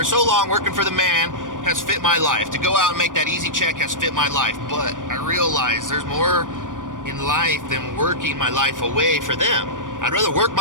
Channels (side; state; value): left; late; 0.88 ms